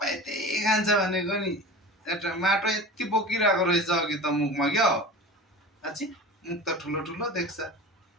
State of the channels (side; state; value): both; normal; correlation 0.34